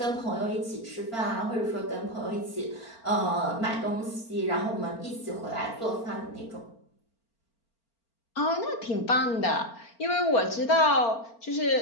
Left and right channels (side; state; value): right; late; 4.4 ms